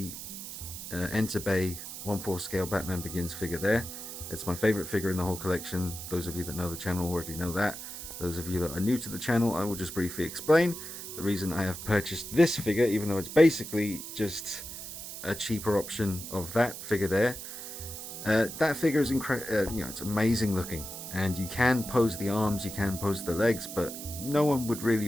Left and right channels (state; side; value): noise; right; hiss, 9 dB below the sound